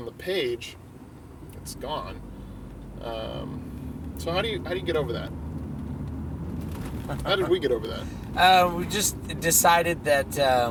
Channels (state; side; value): identical; both; correlation 1.00